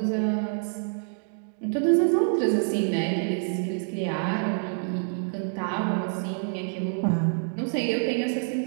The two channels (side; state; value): left; silent; 60 dB below the other